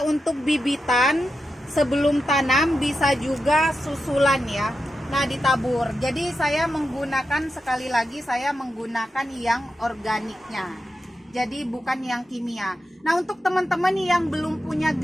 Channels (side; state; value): both; normal; correlation 0.89